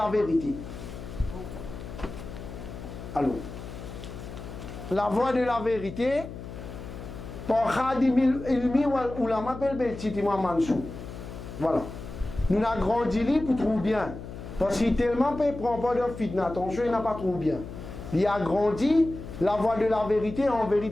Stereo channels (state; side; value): noise; left; hum, 11 dB below the sound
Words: vérité. Alors, la voie de la vérité, par Khadim Ilmi ou la m'appelle Beltiti Mansou. Voilà. Nous avons grandi pour trouver bien. Parce qu'il tellement ne prend pas de fitna. Attention, il n'a pas trouvé bien. Il a grandi la voie de la vérité, en